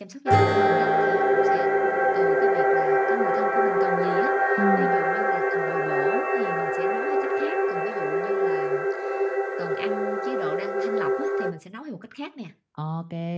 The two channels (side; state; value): both; identical; correlation 1.00